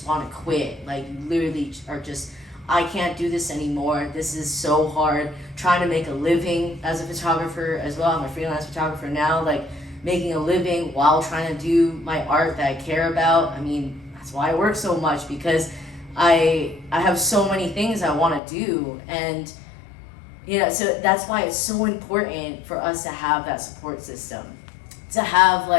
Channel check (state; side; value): drops out; right; at 18.4 s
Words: want to quit. Like you literally are just, I can't do this anymore. This is so hard. Trying to make a living as a photographer as well. I'm a freelance photographer now, like making a living while trying to do my art that I care about. I mean, that's why I work so much because I have so many things I want to do. And so that's why it's so important for us to have that support system. To have